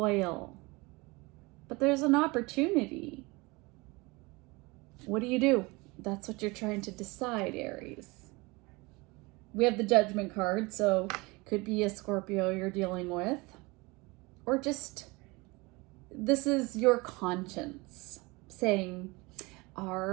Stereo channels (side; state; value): left; quieter; 24.9 dB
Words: But there's an opportunity. What do? That's what you're trying to decide, Aries. We have the Judgment card, so could be a Scorpio you're dealing with, or just this is your conscience saying,